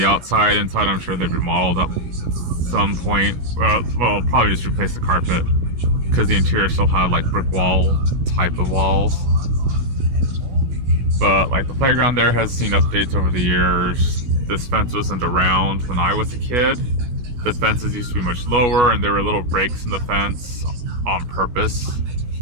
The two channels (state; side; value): late; left; 16 ms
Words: outside. Inside, I'm sure they've remodeled at some point. Well, probably just replace the carpet because the interior still had brick wall type of walls. But the playground there has seen updates over the years. This fence wasn't around when I was a kid. The fences used to be much lower, and there were little breaks in the fence on purpose,